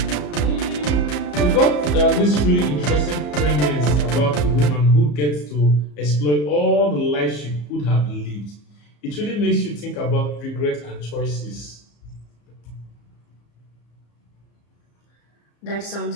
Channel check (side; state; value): right; late; 34 ms